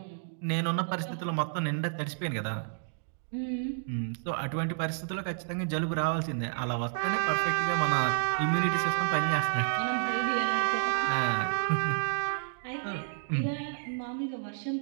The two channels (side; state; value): left; silent; digital silence